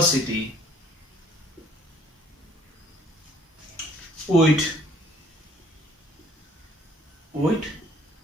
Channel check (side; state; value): both; normal; correlation 0.58